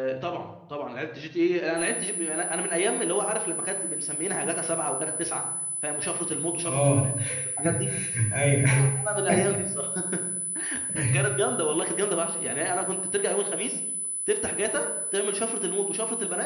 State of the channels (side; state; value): both; identical; correlation 1.00